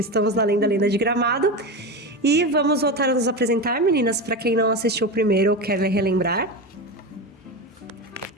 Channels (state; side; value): normal; both; correlation 0.21